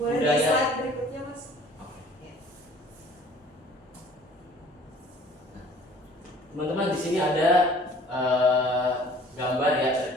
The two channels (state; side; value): normal; both; correlation 0.51